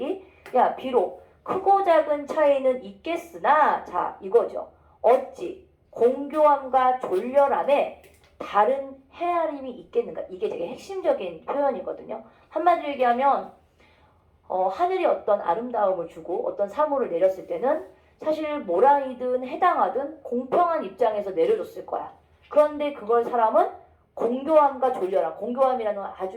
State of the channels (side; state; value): both; identical; correlation 1.00